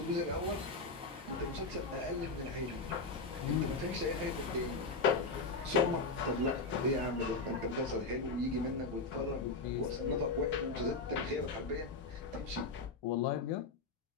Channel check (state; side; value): quieter; right; 3.7 dB